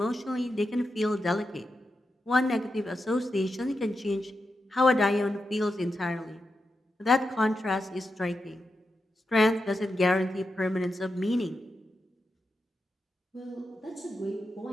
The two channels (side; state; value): both; normal; correlation 0.88